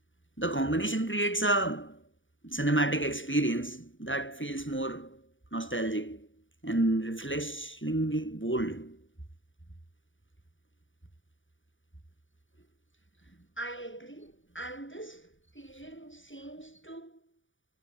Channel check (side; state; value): right; late; 0.56 ms